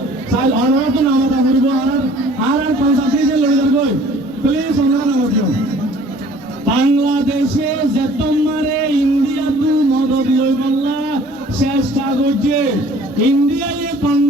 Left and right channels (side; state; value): both; normal; correlation 0.52